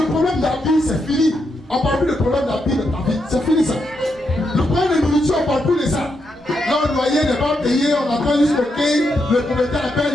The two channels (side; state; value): both; normal; correlation 0.82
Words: problème de la vie, c'est fini. On ne parle plus de problème de la vie de ta vie. C'est fini ça. Le problème de nourriture, on ne parle plus de ça. Là, le loyer n'est pas payé, on attend jusqu'au quai, le propriétaire appelle